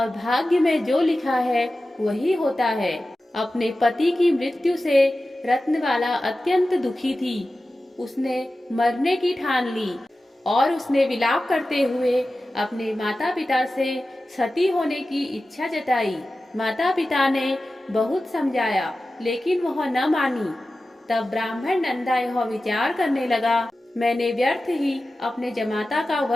भाग्य में जो लिखा है वही होता है। अपने पति की मृत्यु से रत्नबाला अत्यंत दुखी थी। उसने मरने की ठान ली और उसने विलाप करते हुए अपने माता पिता से सती होने की इच्छा जताई। माता पिता ने बहुत समझाया लेकिन वह न मानी। तब ब्राह्मण नंदा यह विचार करने लगा, मैंने व्यर्थ ही अपने जमाता का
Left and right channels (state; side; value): normal; both; correlation 0.94